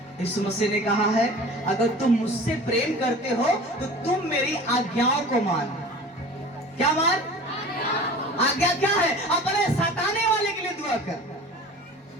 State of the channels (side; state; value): both; normal; correlation 0.40